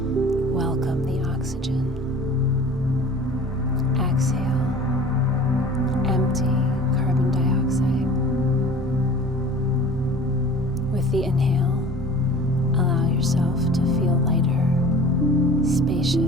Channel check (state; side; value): normal; both; correlation 0.43